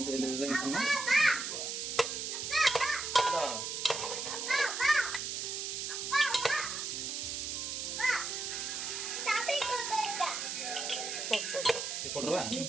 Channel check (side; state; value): right; noise; hiss, 3 dB below the sound